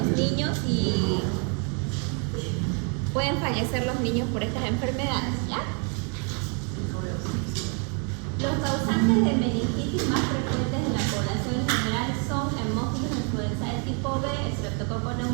niños y pueden fallecer los niños por estas enfermedades, ¿ya? Los causantes de meningitis más frecuentes en la población en general son hemófilos influenzae tipo B, Streptococcus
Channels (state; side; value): quieter; left; 37.5 dB